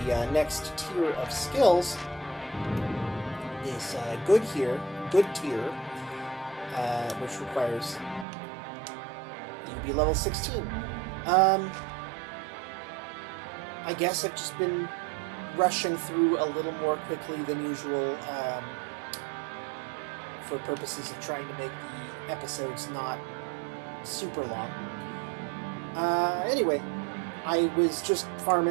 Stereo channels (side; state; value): left; drops out; at 8.2 s